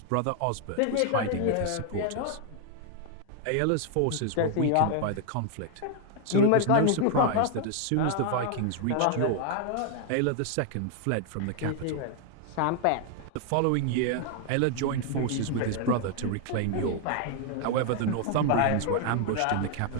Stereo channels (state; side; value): different; both; correlation 0.00